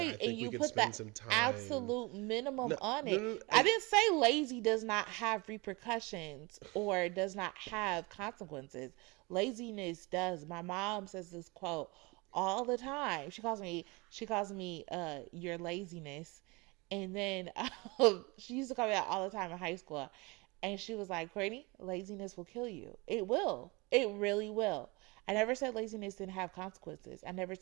and you put that absolute minimum on it. No, I didn't say lazy does not have repercussions or does not have consequences. Laziness does. My mom says this quote all the time. She calls me your laziness. And then she used to call me that all the time in high school. And she was like, Courtney, laziness will kill you. It will. It really will. I never said laziness didn't have consequences. I never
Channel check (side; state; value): left; quieter; 26.1 dB